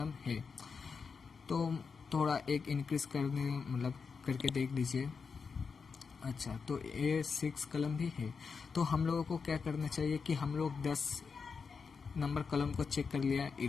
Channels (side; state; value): right; quieter; 5.4 dB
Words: है। तो थोड़ा एक इंक्रीज करने मतलब करके देख लीजिए। अच्छा, तो ये 6 कॉलम भी है। तो हम लोगों को क्या करना चाहिए कि हम लोग 10 नंबर कॉलम को चेक कर लिया,